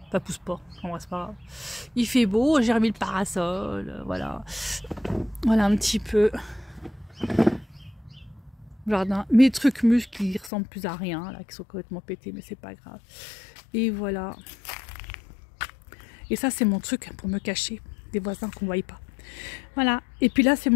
Ça pousse pas, en vrai c'est pas grave. Il fait beau, j'ai remis le parasol, voilà. Voilà un petit peu. Jardin. Mes trucs muscles qui ressemblent plus à rien, là, qui sont complètement pétés, mais c'est pas grave. Et voilà. Et ça c'est mon truc pour me cacher des voisins qu'on ne voit pas. Voilà. Et puis là c'est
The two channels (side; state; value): right; drops out; at 10.5 s